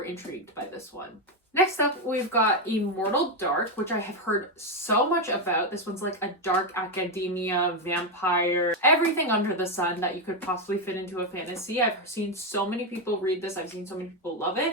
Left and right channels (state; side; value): normal; both; correlation 0.07